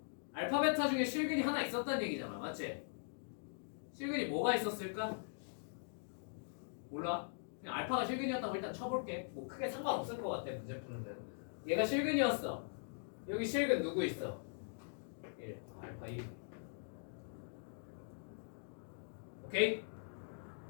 알파 베타 중에 실근이 하나 있었다는 얘기잖아. 맞지? 실근이 뭐가 있었을까? 몰라. 그냥 알파가 실근이었다고 일단 쳐볼게. 뭐 크게 상관없을 것 같아 문제 푸는 대로. 얘가 실근이었어. 여기 실근 누구 있어? 1. 알파 1. 오케이?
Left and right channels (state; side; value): silent; right; digital silence